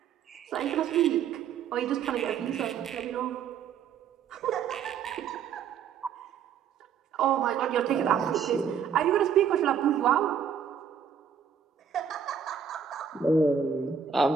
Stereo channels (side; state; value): left; quieter; 7.4 dB